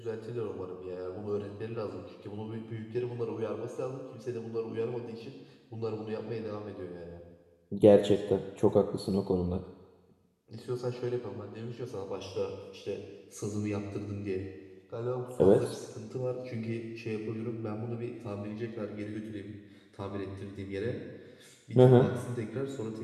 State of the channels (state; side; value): identical; both; correlation 1.00